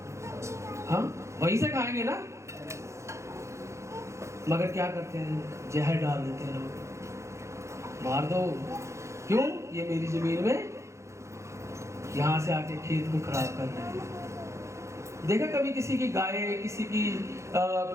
हाँ वहीं से खाएंगे ना, मगर क्या करते हैं? जहर डाल देते हैं लोग, मार दो। क्यों? ये मेरी जमीन में यहाँ से आके खेत को खराब कर रहे हैं। देखा कभी किसी की गाय, किसी की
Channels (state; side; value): late; left; 0.14 ms